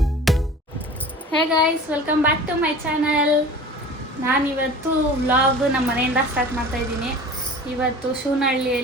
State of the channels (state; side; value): normal; both; correlation 0.40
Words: Hey guys, welcome back to my channel. ನಾನಿವತ್ತು ವ್ಲಾಗ್ ನಮ್ಮ ಮನೆಯಿಂದ ಸ್ಟಾರ್ಟ್ ಮಾಡ್ತಾ ಇದ್ದೀನಿ. ಇವತ್ತು